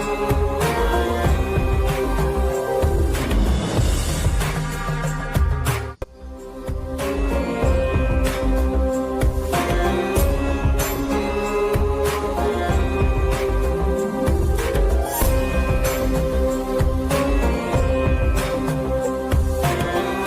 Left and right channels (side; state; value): both; identical; correlation 1.00